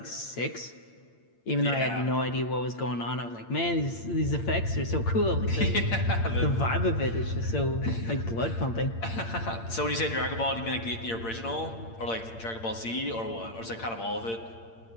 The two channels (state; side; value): late; right; 8.8 ms